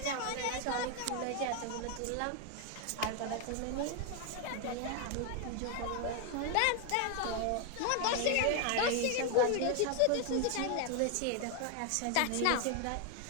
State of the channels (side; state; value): both; different; correlation 0.01